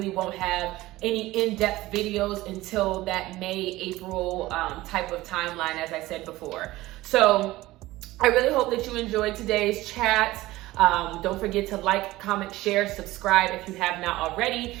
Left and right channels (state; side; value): quieter; left; 17.8 dB